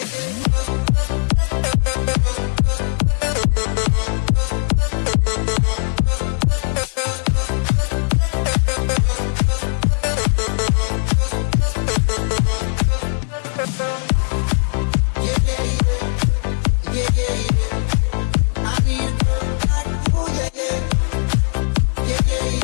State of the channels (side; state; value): right; silent; digital silence